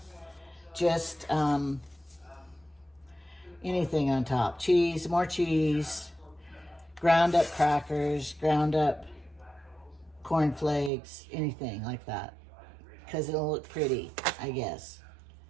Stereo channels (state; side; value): drops out; left; at 10.9 s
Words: just anything on top. Cheese, more cheese, ground up crackers, ground up cornflakes, anything like that. Because it'll look pretty, I guess.